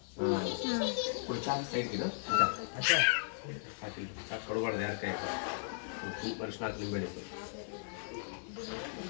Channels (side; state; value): right; silent; 53 dB below the other